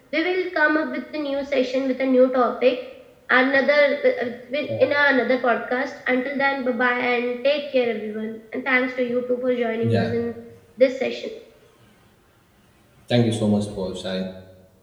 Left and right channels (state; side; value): identical; both; correlation 1.00